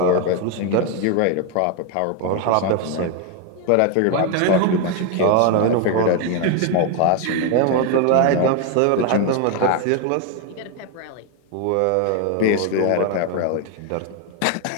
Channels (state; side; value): different; both; correlation 0.01